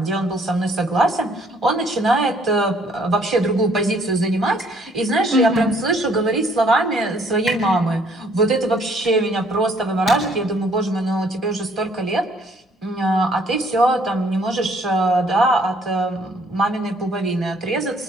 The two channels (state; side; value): normal; both; correlation 0.63